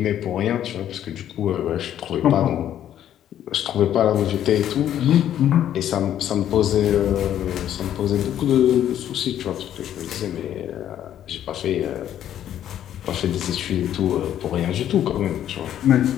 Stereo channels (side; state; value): right; quieter; 10.9 dB